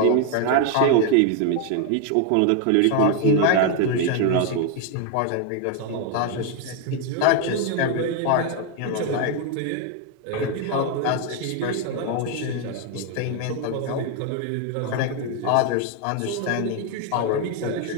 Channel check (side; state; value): both; different; correlation 0.00